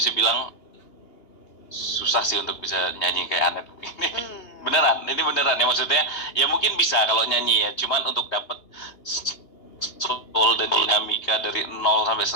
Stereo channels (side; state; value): right; late; 2.9 ms